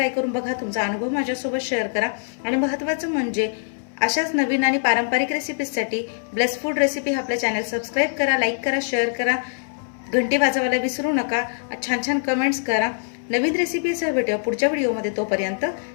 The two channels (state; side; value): silent; right; digital silence